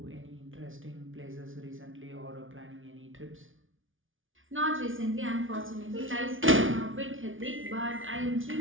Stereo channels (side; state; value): left; late; 0.57 ms